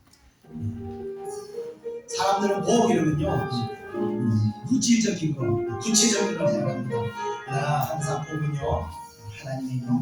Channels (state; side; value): identical; both; correlation 1.00